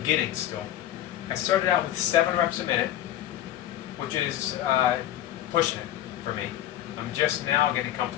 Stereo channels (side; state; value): right; quieter; 12.6 dB